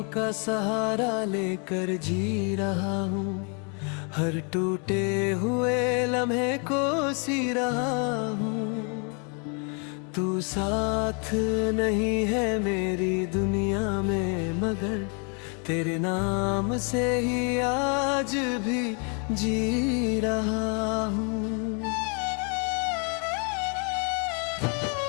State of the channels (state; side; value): quieter; right; 37.5 dB